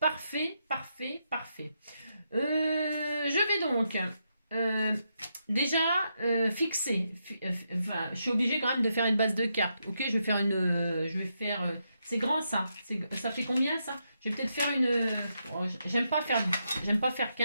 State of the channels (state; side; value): inverted; both; correlation -0.82